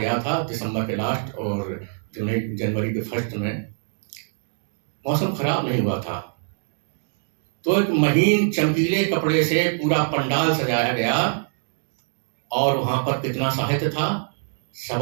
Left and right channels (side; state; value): left; silent; 62 dB below the other